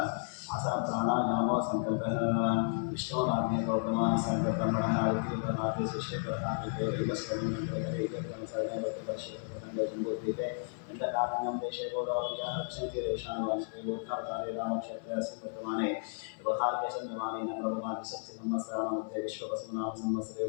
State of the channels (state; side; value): silent; right; 55 dB below the other